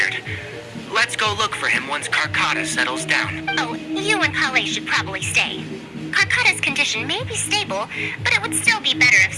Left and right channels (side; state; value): both; identical; correlation 1.00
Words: Let's go look for him once Karkata settles down. Oh, you and Kale should probably stay. Karkata's condition may be stable, but it would still be better if